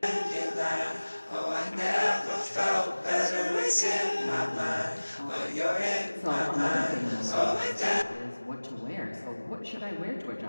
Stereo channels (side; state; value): both; inverted; correlation -1.00